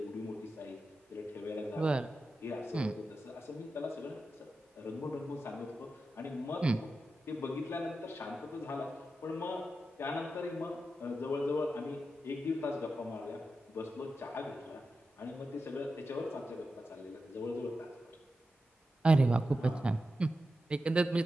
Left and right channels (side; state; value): both; normal; correlation 0.90